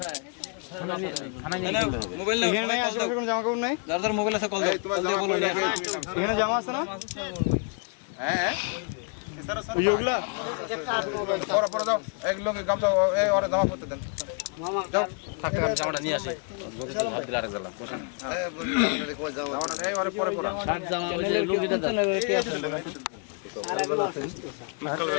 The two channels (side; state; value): right; quieter; 39.3 dB